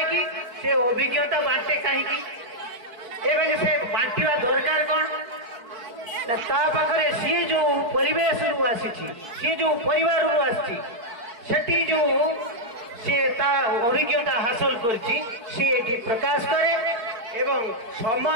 कि से अभिज्ञता बांटे कहीं से बांटा दरकार कौन पाखे सी जो परिवेश रु आसी सी जो परिवार रु आसी जो सी अभिज्ञता हासिल कर प्रकाश करे एवं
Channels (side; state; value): left; late; 4.5 ms